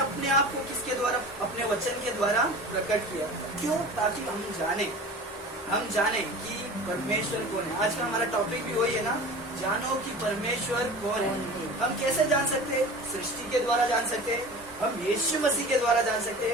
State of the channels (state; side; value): normal; both; correlation 0.37